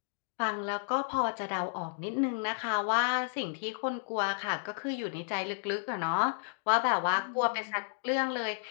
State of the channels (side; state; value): right; silent; digital silence